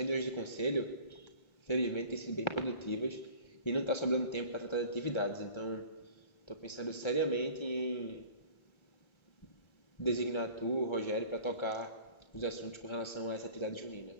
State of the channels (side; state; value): right; late; 1.3 ms